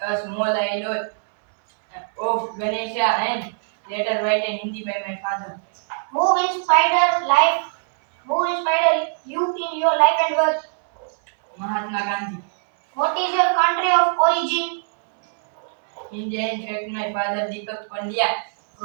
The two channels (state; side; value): silent; left; 64 dB below the other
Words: a small island of Ganesha, and later written in Hindi by my father. Who inspired life? Who inspired you in your life and work? Mahatma Gandhi. What is your country of origin? India, in fact, my father Deepak Pandya